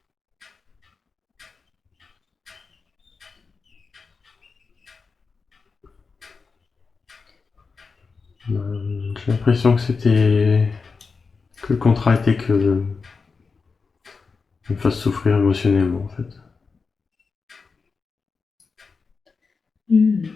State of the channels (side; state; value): right; quieter; 4.7 dB